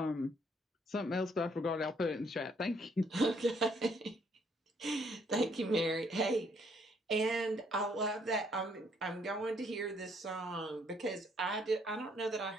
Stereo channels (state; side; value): normal; both; correlation 0.68